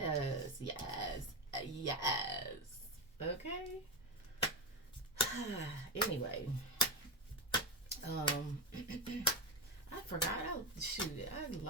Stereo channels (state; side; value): normal; both; correlation 0.13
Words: yes, yes. Okay? Anyway, I forgot. I